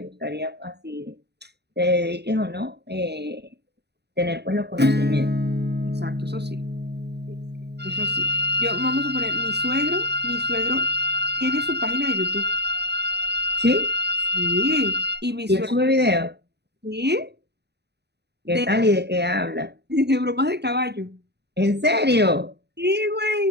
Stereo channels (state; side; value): late; left; 0.49 ms